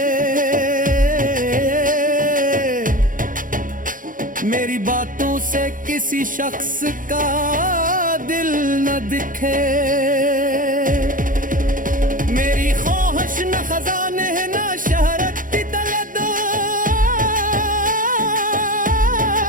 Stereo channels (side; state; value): left; late; 0.39 ms